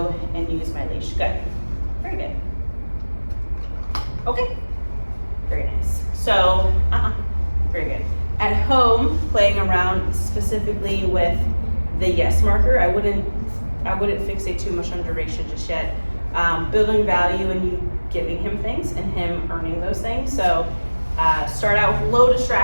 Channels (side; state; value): both; inverted; correlation -1.00